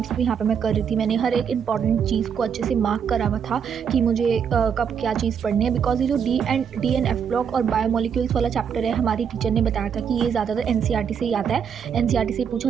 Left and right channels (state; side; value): quieter; left; 7.4 dB